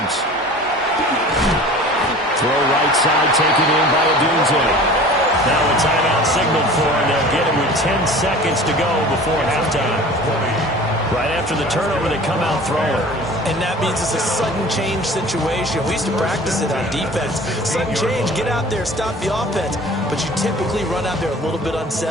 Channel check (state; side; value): normal; both; correlation 0.42